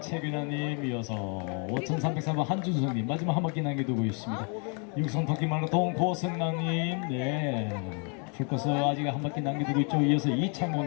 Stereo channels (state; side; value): quieter; right; 38.0 dB